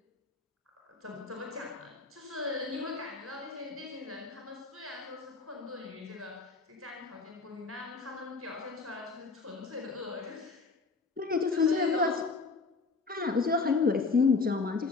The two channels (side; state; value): right; quieter; 4.2 dB